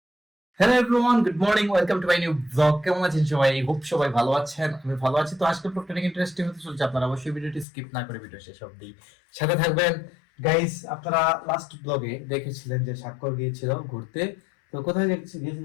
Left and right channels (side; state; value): right; drops out; at 7.7 s